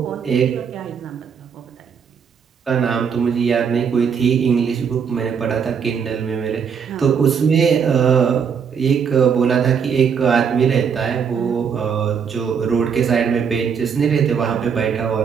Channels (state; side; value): quieter; left; 6.9 dB